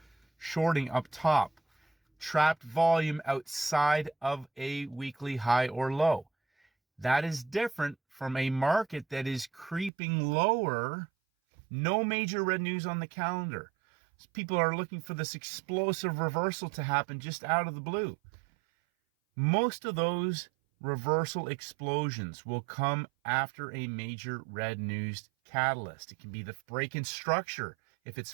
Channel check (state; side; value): drops out; left; at 9.9 s